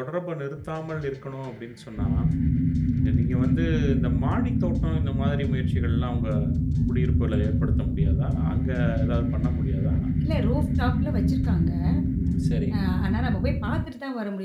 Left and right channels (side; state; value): both; identical; correlation 1.00